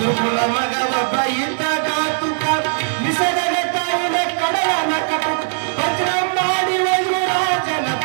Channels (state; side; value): silent; left; digital silence